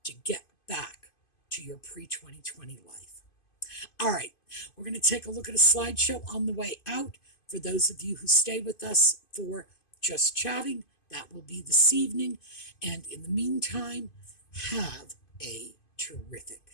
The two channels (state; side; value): late; right; 2.5 ms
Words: to get back to your pre-2020 life? All right, we're going to take a look at a slideshow on the way out. For those of you who stay with us for Just Chatting, that will be this evening. And in the meantime, have a